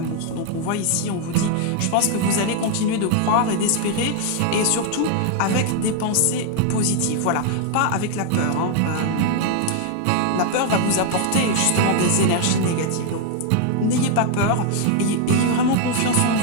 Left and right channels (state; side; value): different; both; correlation 0.00